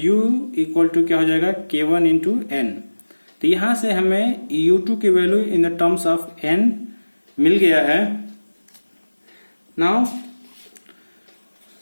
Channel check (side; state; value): both; inverted; correlation -1.00